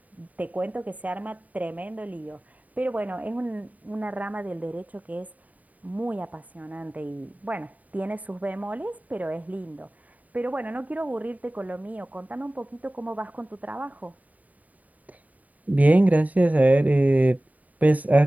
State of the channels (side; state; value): left; late; 0.073 ms